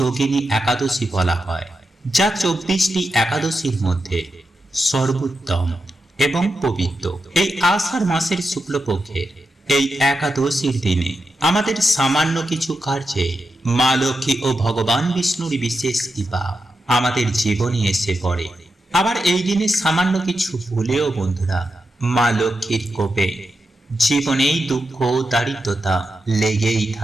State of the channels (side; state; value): both; normal; correlation 0.88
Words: একাদশী বলা হয়, যা 24টি একাদশীর মধ্যে সর্বোত্তম এবং পবিত্র। এই আষাঢ় মাসের শুক্লপক্ষের এই একাদশীর দিনে আমাদের সামান্য কিছু কার্যে মা লক্ষ্মী ও ভগবান বিষ্ণুর বিশেষ কৃপা আমাদের জীবনে এসে পড়ে। আবার এই দিনে সামান্য কিছু ভুলেও বন্ধুরা মা লক্ষ্মীর কোপে জীবনেই দুঃখ দারিদ্রতা লেগেই